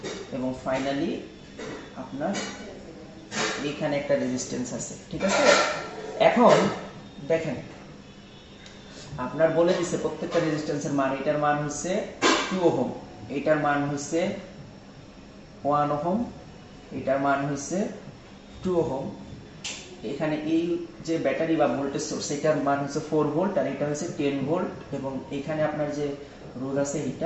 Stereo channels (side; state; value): both; identical; correlation 1.00